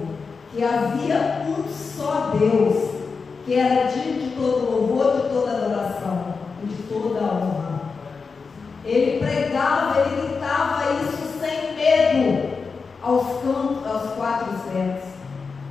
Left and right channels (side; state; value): right; quieter; 4.9 dB